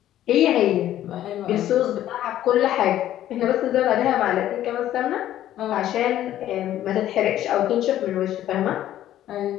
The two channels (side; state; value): right; quieter; 12.5 dB